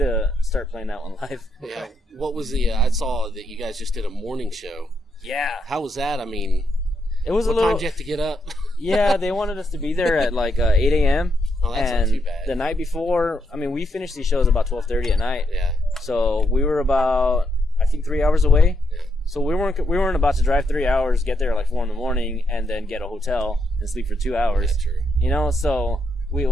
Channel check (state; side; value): normal; both; correlation 0.79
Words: start playing that one live. Yeah. What was I saw that you guys just did a morning show. Yeah. How was that? I mean, it was what time did you have to get up? Yeah, they wanted us to be there at like 8 a.m. Oh, that's and not too bad. The night before, I mean, we finished these shows about 12:30 at night. Yeah. So we were about, I think, 3 hours away. Yeah. So we weren't about to drive 3 hours, get there at like 4 in the morning, and then get a hotel and sleep for 2 hours. That's true. So